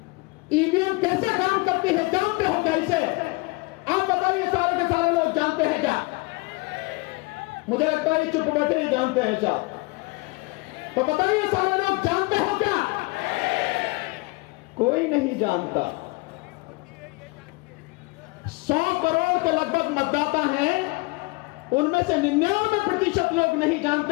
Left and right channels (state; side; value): quieter; right; 26.4 dB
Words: ईवीएम कैसे काम करती है जानते हो क्या इसे? आप बताइए, सारे के सारे लोग जानते हैं क्या? मुझे लगता है चुप बैठे ही जानते हैं साहब। तो बताइए, सारे लोग जानते हो क्या? कोई नहीं जानता। 100 करोड़ के लगभग मतदाता हैं, उनमें से 99% लोग नहीं